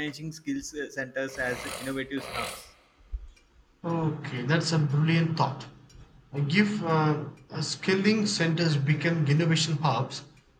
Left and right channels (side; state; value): both; identical; correlation 1.00